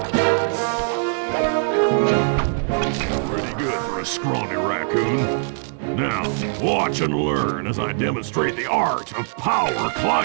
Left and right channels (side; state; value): left; silent; digital silence